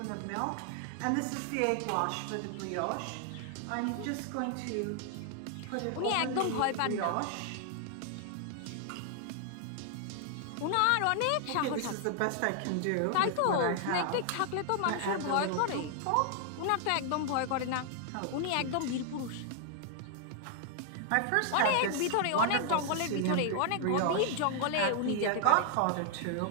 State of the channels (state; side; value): different; both; correlation 0.00